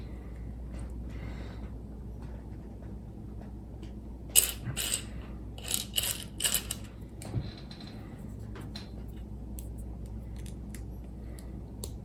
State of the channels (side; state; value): both; identical; correlation 1.00